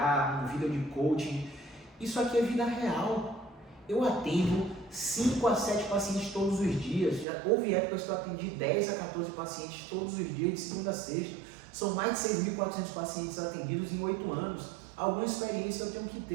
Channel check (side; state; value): left; drops out; at 7.2 s